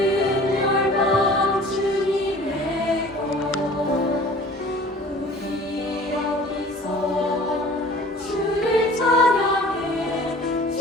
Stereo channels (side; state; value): both; normal; correlation 0.46